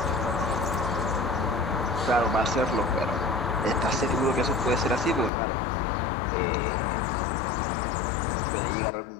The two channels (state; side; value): drops out; right; at 5.3 s